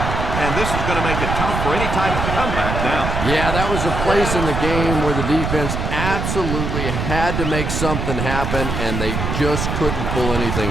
And this is going to make it tough for any type of comeback now. Yeah, that was a place in the game where the defense absolutely had to make something happen, and they just couldn't pull anything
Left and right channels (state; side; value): noise; right; rumble, 2 dB below the sound